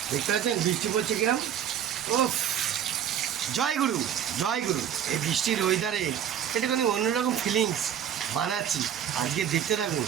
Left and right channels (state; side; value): quieter; left; 9.5 dB